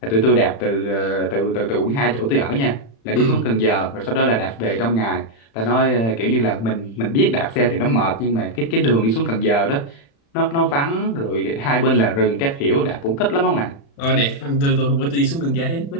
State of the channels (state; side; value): late; right; 35 ms